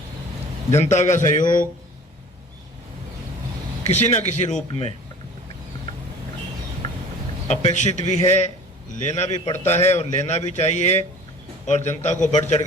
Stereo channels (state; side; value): normal; both; correlation 0.44